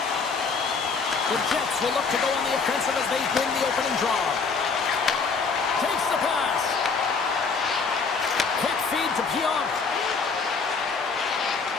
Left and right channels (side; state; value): right; quieter; 4.9 dB